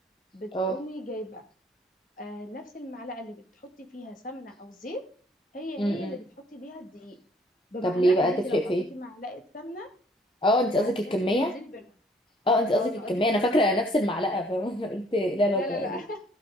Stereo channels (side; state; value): both; normal; correlation 0.60